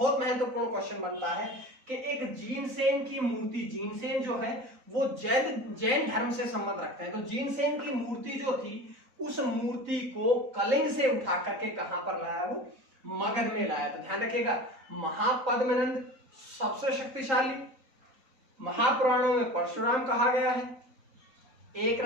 महत्वपूर्ण क्वेश्चन बनता है कि एक जीनसेन की मूर्ति, जीनसेन जो है वो जैन धर्म से संबंध रखते हैं। तो जीनसेन की मूर्ति जो थी, उस मूर्ति को कलिंग से उठा करके कहां पर लाया? वो मगध में लाया। तो ध्यान रखिएगा, महापद्मनंद सबसे शक्तिशाली, महापुराणों में परशुराम कहा गया है,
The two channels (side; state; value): left; late; 4.0 ms